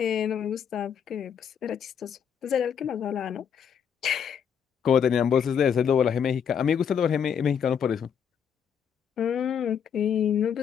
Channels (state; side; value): quieter; right; 7.7 dB